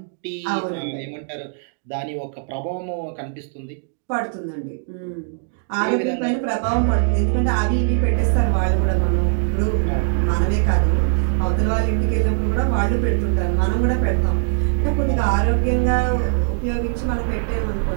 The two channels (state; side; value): silent; left; digital silence